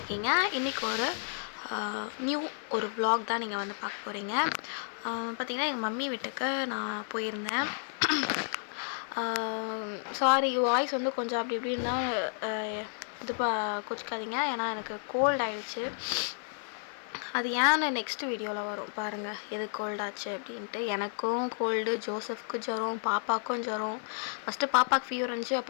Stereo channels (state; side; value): silent; right; digital silence